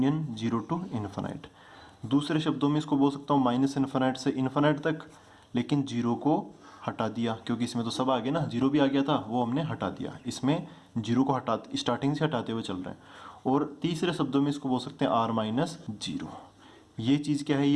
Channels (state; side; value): identical; both; correlation 1.00